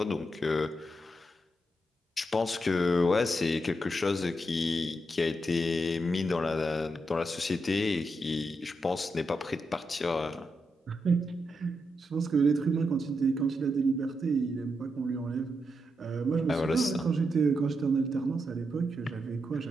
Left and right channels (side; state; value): both; normal; correlation 0.84